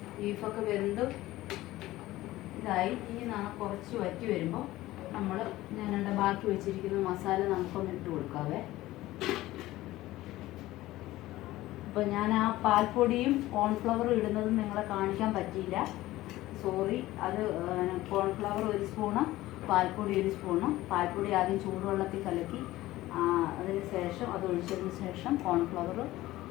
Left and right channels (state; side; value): quieter; right; 16.8 dB